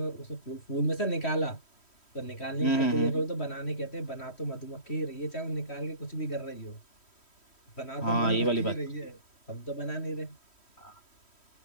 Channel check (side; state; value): right; late; 3.1 ms